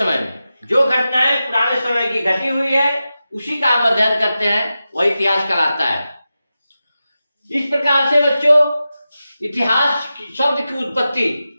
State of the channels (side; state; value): both; inverted; correlation -0.92